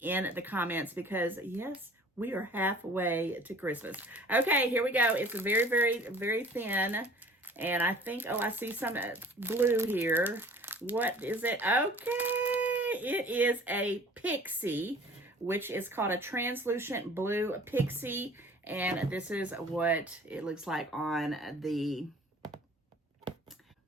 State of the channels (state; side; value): normal; both; correlation 0.48